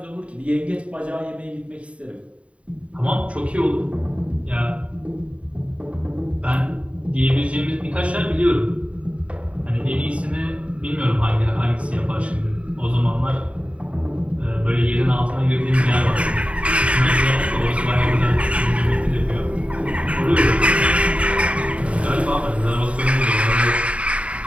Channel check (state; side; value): late; left; 0.063 ms